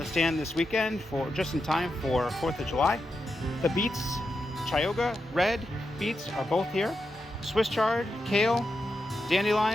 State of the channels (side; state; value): both; normal; correlation 0.87